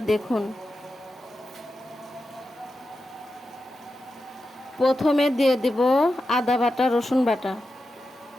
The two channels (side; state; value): both; normal; correlation 0.90